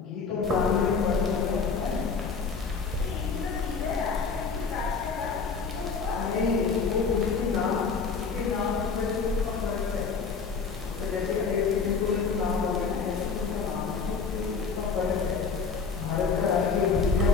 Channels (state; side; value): quieter; right; 5.2 dB